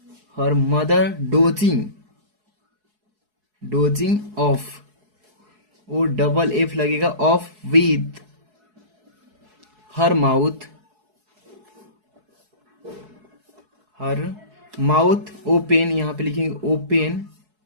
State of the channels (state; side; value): late; left; 4.7 ms